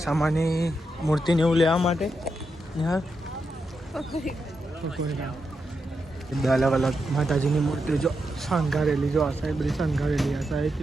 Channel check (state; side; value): normal; both; correlation 0.85